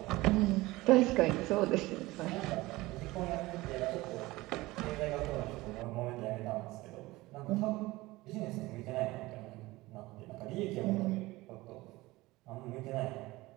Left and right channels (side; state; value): left; quieter; 19.9 dB